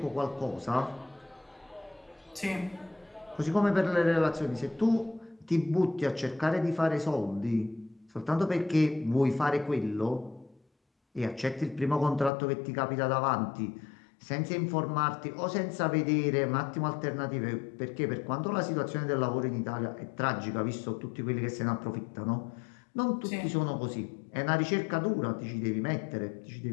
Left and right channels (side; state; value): right; drops out; at 12.3 s